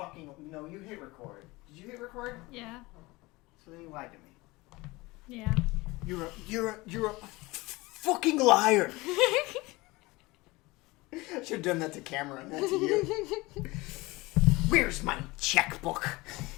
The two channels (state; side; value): quieter; right; 22.1 dB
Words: No, you hit record. Did you hit record? Yeah. So then you lied to me. Yeah. You're a fucking liar. I should have done that to camera, not to you. Where's my checkbook?